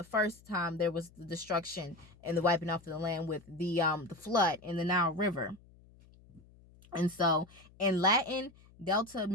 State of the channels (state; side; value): noise; left; hum, 25 dB below the sound